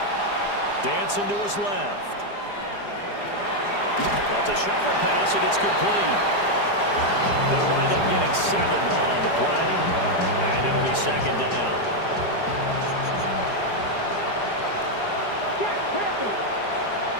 Dancing to his left. Well, it's a shuffle pass, and it's complete. They'll wind up getting 7 on the play, and it'll be 2nd down.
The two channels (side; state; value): right; late; 4.9 ms